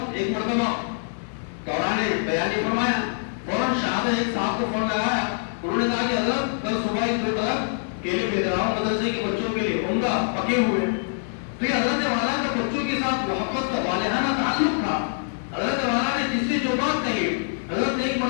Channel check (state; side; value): silent; right; digital silence